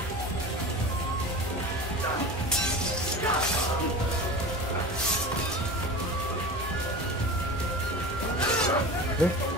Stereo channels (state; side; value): normal; both; correlation 0.33